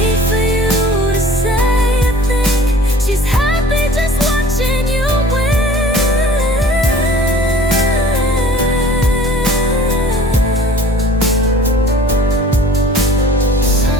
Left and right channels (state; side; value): normal; both; correlation 0.48